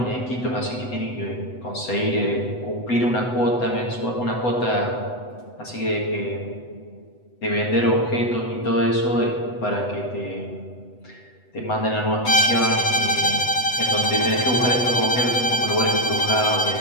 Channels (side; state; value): right; late; 8.0 ms